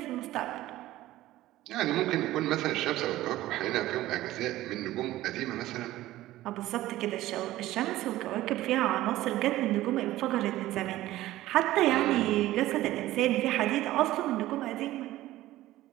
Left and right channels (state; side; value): quieter; left; 15.8 dB